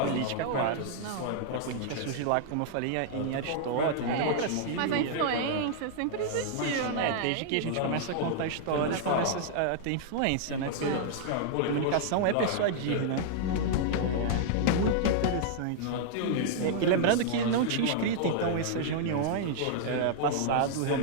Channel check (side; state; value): both; different; correlation -0.01